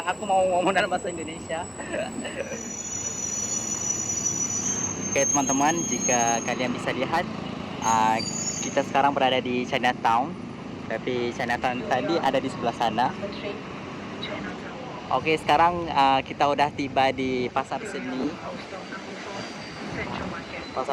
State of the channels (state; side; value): identical; both; correlation 1.00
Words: aku mau ngomong dalam bahasa Indonesia. Oke teman-teman, jika kalian bisa lihat, kita sekarang berada di Chinatown, tapi Chinatown tadi ada di sebelah sana. Oke, sekarang kita udah tiba di pasar seni